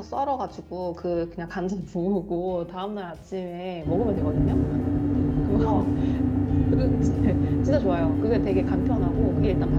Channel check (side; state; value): both; identical; correlation 1.00